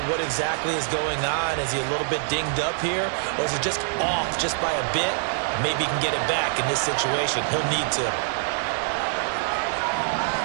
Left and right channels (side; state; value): left; silent; 62 dB below the other